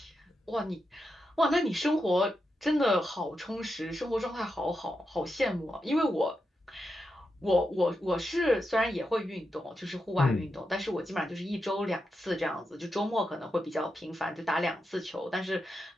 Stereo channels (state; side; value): normal; both; correlation 0.87